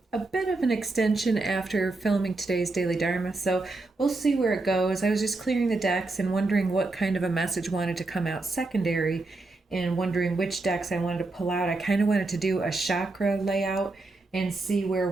bit of an extension after filming today's Daily Dharma, so we'll see where it goes. I was just clearing the decks and wondering what kind of a message wanted to come out secondary and wondering which decks I wanted to pull out. I kind of wanted to do a chakra layout and see where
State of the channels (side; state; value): left; quieter; 3.2 dB